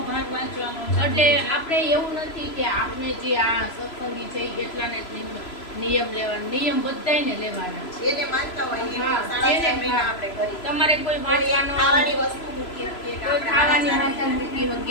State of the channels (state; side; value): late; right; 3.0 ms